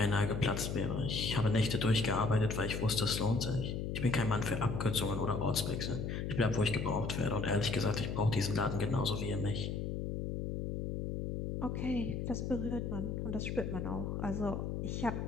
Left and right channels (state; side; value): noise; left; hum, 3 dB below the sound